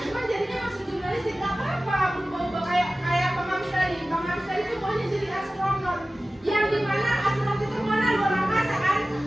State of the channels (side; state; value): both; normal; correlation 0.96